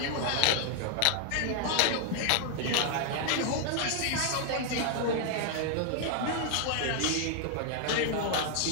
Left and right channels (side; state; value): both; different; correlation 0.00